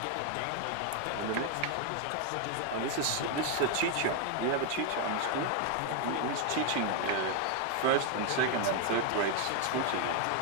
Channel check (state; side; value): different; both; correlation 0.01